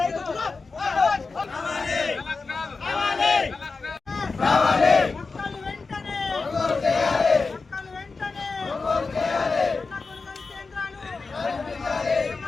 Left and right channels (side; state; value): right; quieter; 4.2 dB